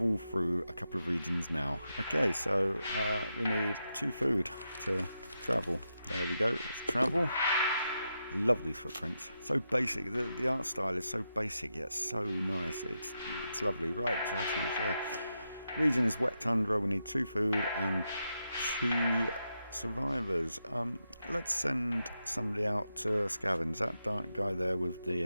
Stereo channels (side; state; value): both; inverted; correlation -0.86